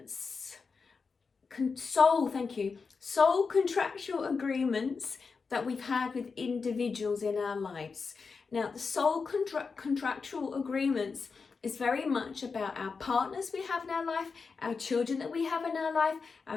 Thank you. Soul contractual agreements that we've had with individuals in our lives. Now, the soul contractual agreements is very much about our partners we have in our life, our children that we have in our life,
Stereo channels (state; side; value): quieter; right; 4.9 dB